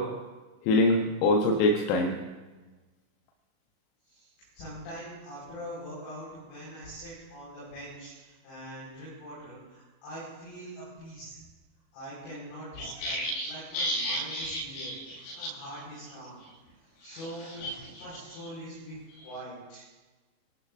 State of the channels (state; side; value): late; right; 37 ms